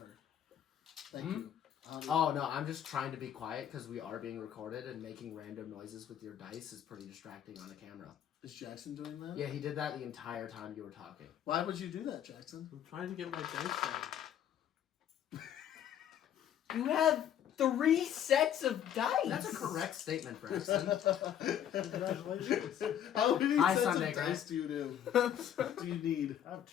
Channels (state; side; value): quieter; right; 10.0 dB